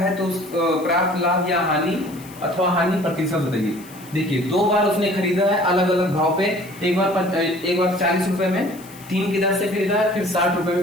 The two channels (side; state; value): left; noise; hiss, 21 dB below the sound